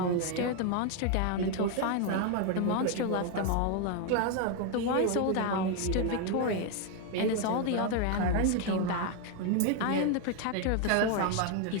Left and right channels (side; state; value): both; different; correlation 0.01